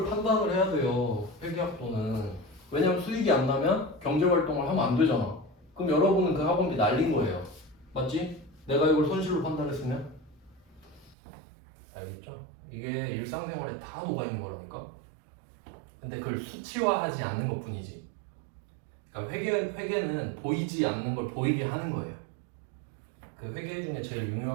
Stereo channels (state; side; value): drops out; left; at 11.2 s